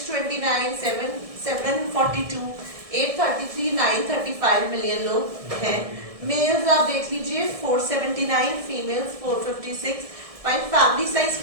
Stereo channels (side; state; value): left; late; 1.6 ms